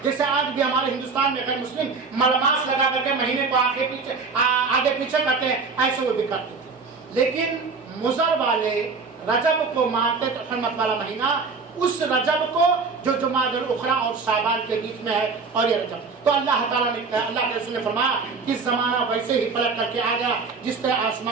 جیسے آج بھی ہمارے ہندوستان میں غیر مسلم ملماس لگا کر کے مہینے کو آگے پیچھے کرتے ہیں، ایسے وہ بھی کرتے تھے. لیکن مضر والے رجب کو مانتے تھے حرمت والا مہینہ، اس رجب کو جو جمادی الاخری اور شعبان کے بیچ میں ہے، اور یہ رجب. تو اللہ تعالیٰ نے، اللہ کے رسول نے فرمایا کہ زمانہ ویسے ہی پلٹ کر کے آ گیا جس طرح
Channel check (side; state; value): left; quieter; 4.6 dB